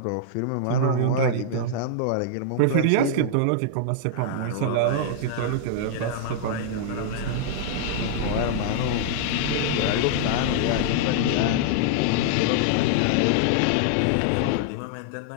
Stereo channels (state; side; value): different; both; correlation -0.01